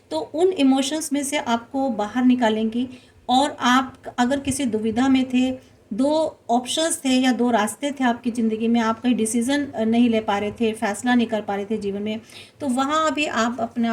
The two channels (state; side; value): identical; both; correlation 1.00